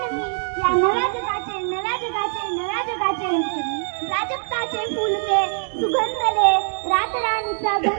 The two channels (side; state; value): left; silent; digital silence